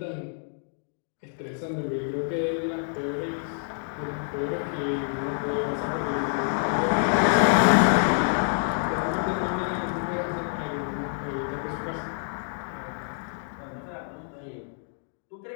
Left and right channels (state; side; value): silent; right; digital silence